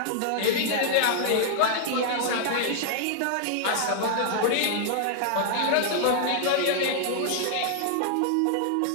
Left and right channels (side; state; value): both; different; correlation -0.01